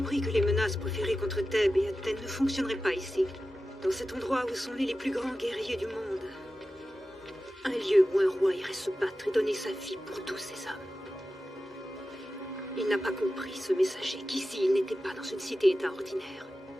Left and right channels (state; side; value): normal; both; correlation 0.93